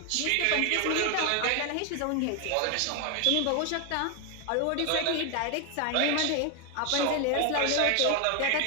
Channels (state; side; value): different; both; correlation 0.01